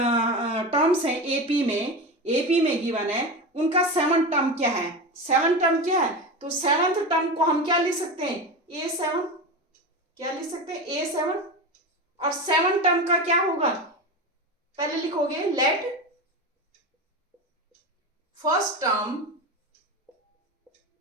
टर्म्स हैं, एपी में गिवन है, उनका सेवन टर्म क्या है, सेवन टर्म क्या है, तो सेवंथ टर्म को हम क्या लिख सकते हैं, a7, क्या लिख सकते हैं, a7, और सेवन टर्म का क्या होगा, पहले लिखोगे let first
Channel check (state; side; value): normal; both; correlation 0.23